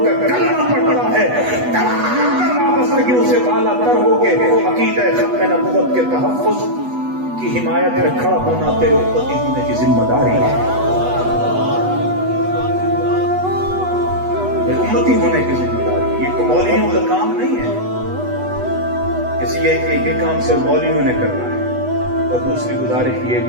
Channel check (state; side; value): late; left; 8.1 ms